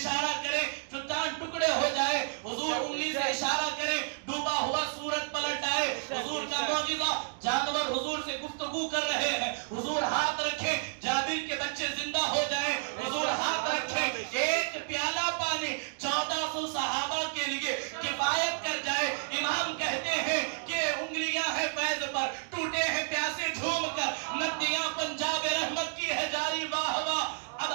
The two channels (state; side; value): silent; left; digital silence